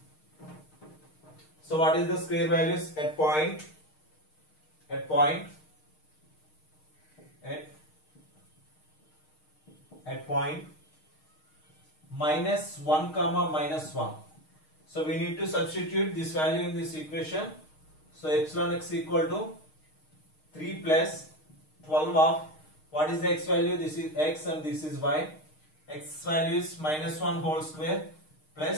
So what is the square values at point minus 1 comma minus 1. So we need to substitute this value in this equation. So epsilon x equal to 3 plus 12 of, what is the x value? This is x and this is y. X value is minus 1 whole square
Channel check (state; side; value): late; right; 6.5 ms